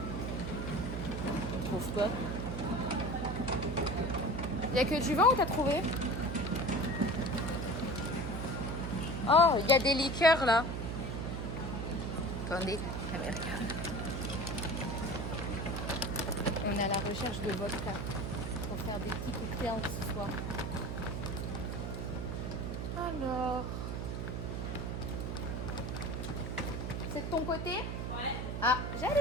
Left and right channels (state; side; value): noise; right; hum, 3 dB below the sound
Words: On trouve quoi? Il n'y a que du vin ou t'as trouvé? Oh, il y a des liqueurs là. Attendez, caméra. On est à la recherche de vodka pour faire des petits cocktails ce soir. Alors, c'est de ton côté? Ouais. Ah,